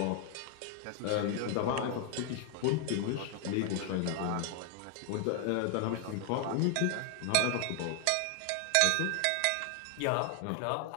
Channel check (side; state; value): both; different; correlation 0.00